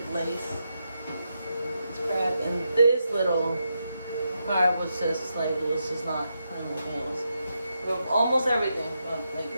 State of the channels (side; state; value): both; inverted; correlation -0.85